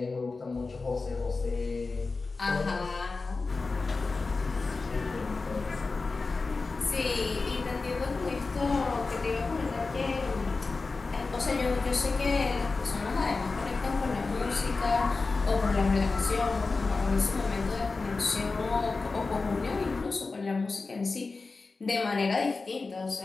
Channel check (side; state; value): right; quieter; 4.0 dB